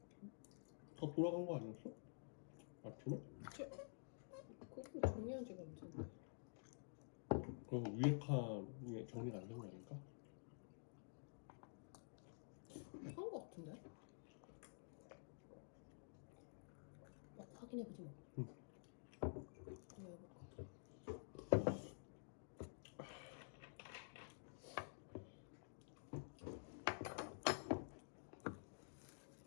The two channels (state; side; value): silent; right; digital silence